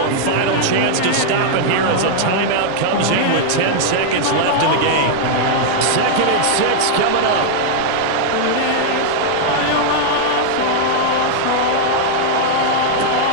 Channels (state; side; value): different; both; correlation -0.01